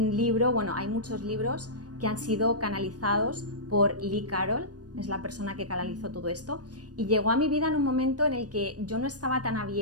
libro, bueno, hay muchos libros que han sido canalizados por Lee Carroll, es la persona que canalizó todo esto, y llegó a mi vida en un momento en el que yo no estaba tan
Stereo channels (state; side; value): late; left; 0.69 ms